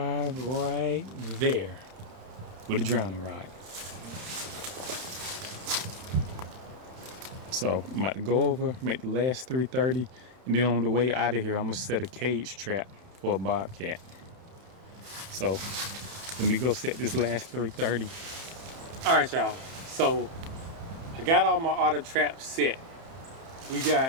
right there with a drowning rod. So I'm about to go over, make the last 330, and then on the way out of here, I'm gonna set a cage trap for a bobcat. So let me go set this last 330. All right, y'all. So I got all my otter traps set. We got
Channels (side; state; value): left; late; 31 ms